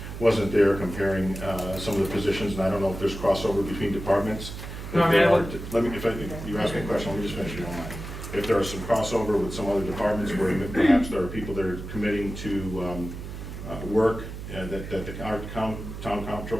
wasn't there comparing some of the positions, and I don't know if there's crossover between departments. No, I mean, you asked me a question, let me just finish if you don't mind. If there is some crossover with some other departments where perhaps there are people that are committing to work that the town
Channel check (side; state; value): right; noise; hum, 9 dB below the sound